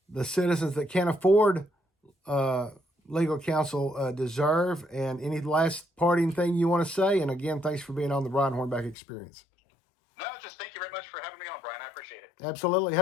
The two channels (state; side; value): drops out; right; at 9.0 s